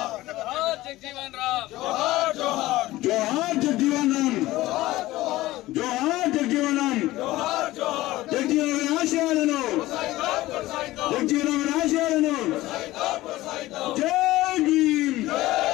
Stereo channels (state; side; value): quieter; right; 17.3 dB